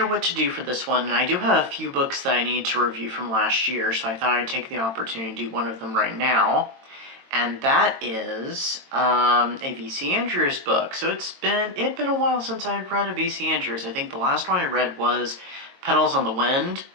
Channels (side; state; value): left; late; 22 ms